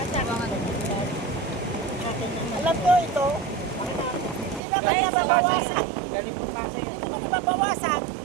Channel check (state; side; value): drops out; left; at 4.6 s